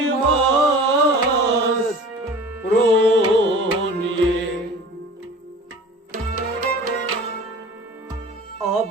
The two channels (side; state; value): both; normal; correlation 0.41